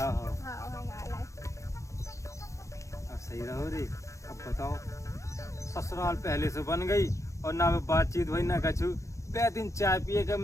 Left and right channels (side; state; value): right; late; 0.15 ms